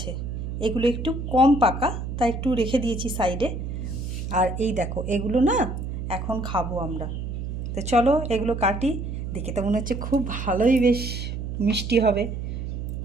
এগুলো একটু কম পাকা তাই একটু রেখে দিয়েছি সাইডে। আর এই দেখো এগুলো না এখন খাবো আমরা। তো চলো এগুলো কাটি। দেখে তো মনে হচ্ছে খুব ভালোই, বেশ মিষ্টি হবে।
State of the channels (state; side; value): noise; right; hum, 5 dB below the sound